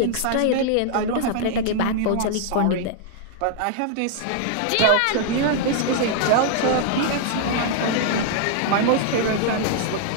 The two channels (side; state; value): both; different; correlation -0.01